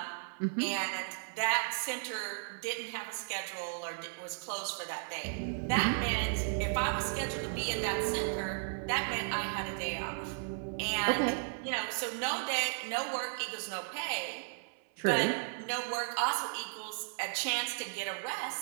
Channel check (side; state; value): left; silent; 54 dB below the other